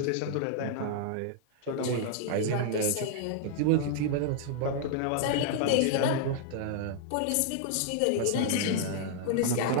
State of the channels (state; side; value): different; both; correlation -0.01